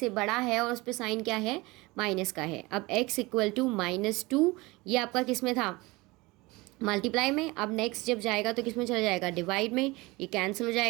बड़ा है और उस पर साइन क्या है, माइनस का है। अब x इक्वल टू -2, ये आपका किस में था, मल्टीप्लाई में। अब नेक्स्ट जब जाएगा तो किस में चला जाएगा, डिवाइड में, ये कैंसिल हो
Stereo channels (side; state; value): left; quieter; 22.7 dB